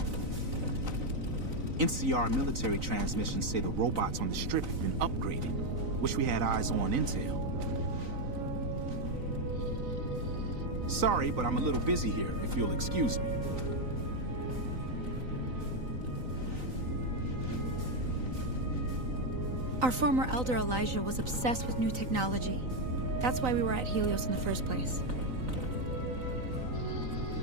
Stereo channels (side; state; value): left; late; 3.9 ms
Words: NCR military transmissions say the robots on the strip have been upgraded. Wish we had eyes on intel. Sorry, but I'm a little busy here, if you'll excuse me. Our former Elder Elijah was obsessed with new technology. That's why we were at Helios in the first place.